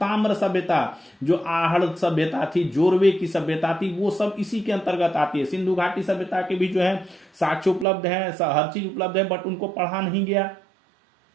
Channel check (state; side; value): drops out; left; at 7.9 s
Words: सभ्यता, जो आहड़ सभ्यता थी, जोरवे की सभ्यता थी, वो सब इसी के अंतर्गत आती है। सिंधु घाटी सभ्यता के भी जो है साक्ष्य उपलब्ध है, हर चीज उपलब्ध है, बट उनको पढ़ा नहीं गया।